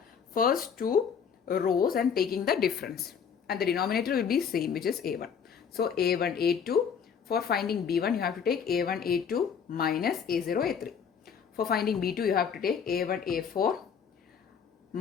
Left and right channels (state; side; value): quieter; right; 7.0 dB